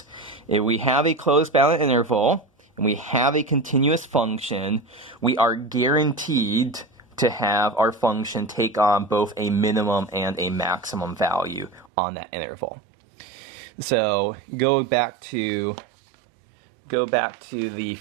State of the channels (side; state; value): left; drops out; at 11.9 s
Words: If we have a closed bounded interval, and we have a continuous function, we are guaranteed to have our function take on both a minimum and a maximum value on that interval. So go back to the